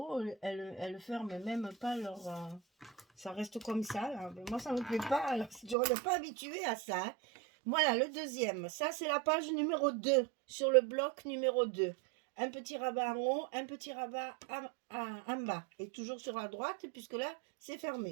elles ferment même pas leur... ça reste comme ça. Là. Mais moi, ça ne me plaît pas. Alors, je ne suis pas habituée à ça. Hein. Voilà, le deuxième. Ça, c'est la page numéro 2, sur le bloc numéro 2. Un petit rabat en haut, un petit rabat en bas. Et toujours sur la droite, puisque là, c'est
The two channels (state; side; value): drops out; left; at 5.8 s